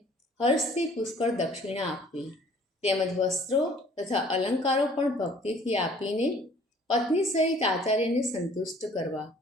હર્ષથી પુષ્કળ દક્ષિણા આપવી તેમજ વસ્ત્રો તથા અલંકારો પણ ભક્તિથી આપીને પત્ની સહિત આચાર્યને સંતુષ્ટ કરવા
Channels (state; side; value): normal; both; correlation 0.54